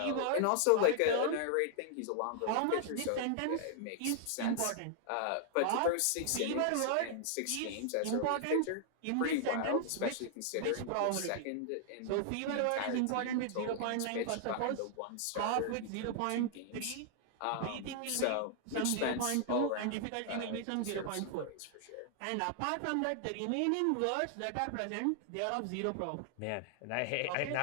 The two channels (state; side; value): different; both; correlation -0.01